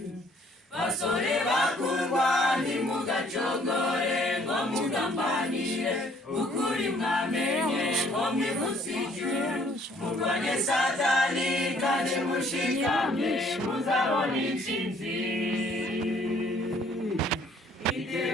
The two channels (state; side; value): normal; both; correlation 0.61